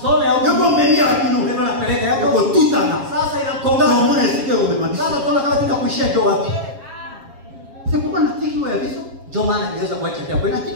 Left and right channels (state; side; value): late; left; 7.3 ms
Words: ya Yoko menu ya bino. Ndio napeleka Yoko yako. tutana. Sasa Ndio inakongana. mwana sike umemaliza. Sasa tunaona kama tunakuishia ndio wapi. C'est pourquoi natiki wa biso. Ndio maana niweza kuacha kwa kweli.